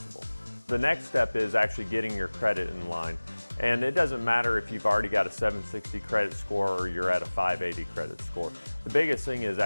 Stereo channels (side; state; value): both; inverted; correlation -1.00